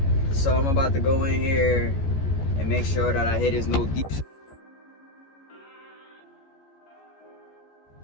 So I'm about to go in here and make sure that I hit his no deep.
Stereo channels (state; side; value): late; right; 14 ms